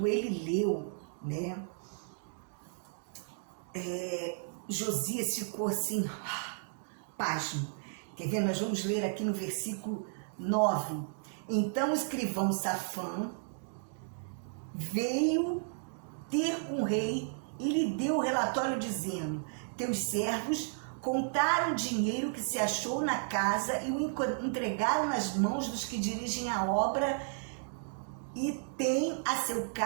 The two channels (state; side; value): silent; left; digital silence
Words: ele leu, né, Josias ficou assim, pasmo. Quer ver? Nós vamos ler aqui no versículo 9. Então o escrivão Safã veio ter com o rei e lhe deu o relatório dizendo: teus servos contaram o dinheiro que se achou na casa e o entregaram nas mãos dos que dirigem a obra e têm a seu